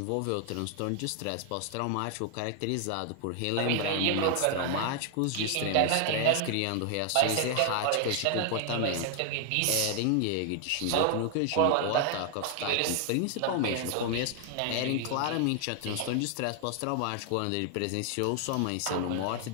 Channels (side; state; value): both; different; correlation 0.00